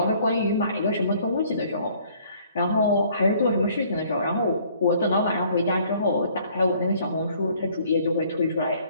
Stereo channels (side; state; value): both; inverted; correlation -0.59